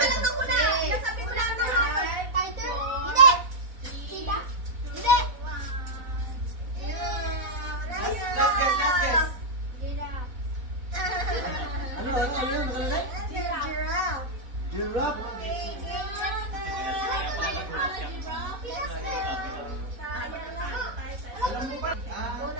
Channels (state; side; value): late; left; 4.0 ms